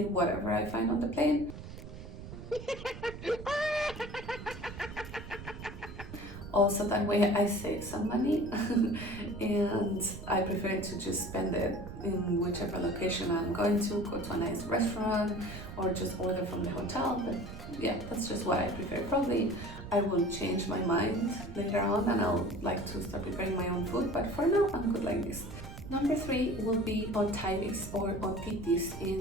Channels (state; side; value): noise; right; rumble, 12 dB below the sound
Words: whatever I find on the plane. Also, that way I save some money and I prefer to just spend it in whichever location I'm going to, go to a nice restaurant or just order from the hotel. But yeah, that's just what I prefer. Probably I will change my mind later on and I'll like to start preparing my own food, but for now I'm good like this. Number 3 will be otitis or otitis